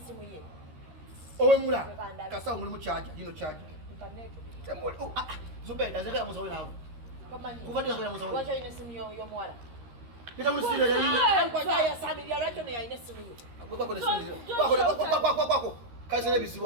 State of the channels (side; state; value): left; late; 13 ms